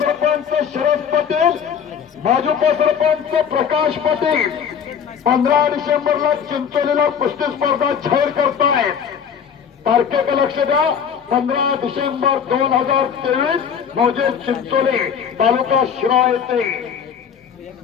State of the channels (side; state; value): right; quieter; 7.5 dB